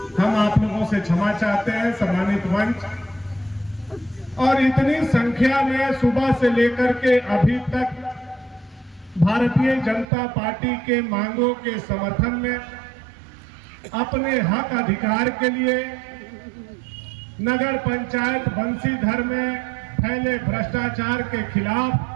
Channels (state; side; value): drops out; left; at 10.1 s